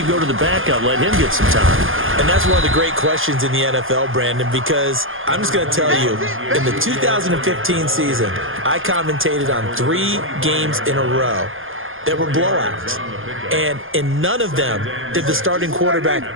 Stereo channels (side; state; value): left; late; 0.59 ms